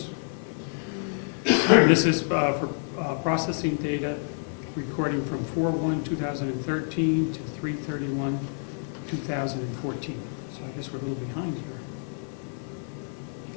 This is for processing data, recording from 4/1/2013 to 3/31/2014. So I guess we're a little behind here.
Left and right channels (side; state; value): right; silent; 58 dB below the other